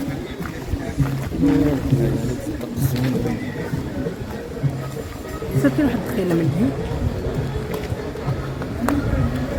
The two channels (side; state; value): both; identical; correlation 1.00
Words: صافي واحد الدخيله من